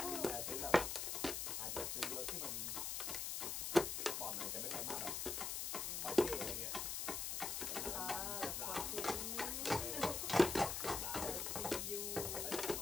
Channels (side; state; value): left; noise; hiss, 1 dB below the sound